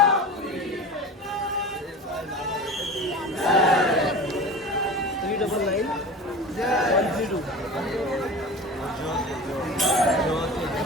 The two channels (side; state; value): both; normal; correlation 0.33